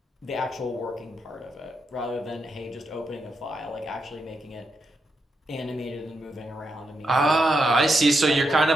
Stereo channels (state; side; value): normal; both; correlation 0.83